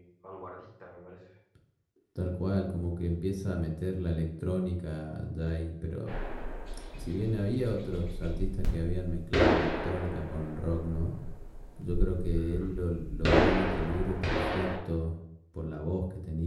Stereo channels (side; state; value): both; identical; correlation 1.00